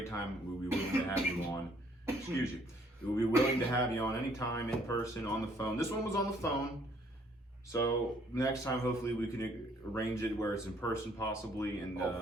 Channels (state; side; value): normal; both; correlation 0.63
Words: time. We'll be willing to have you on. Excuse you. We'll be willing to have you on anytime, in person, on the phone. This one was on the phone, so next time, hopefully, we can arrange it where it's in person, possibly. And